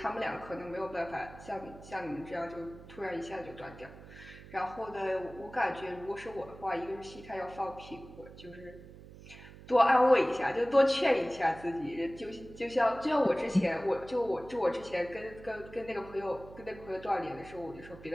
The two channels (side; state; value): right; noise; hum, 17 dB below the sound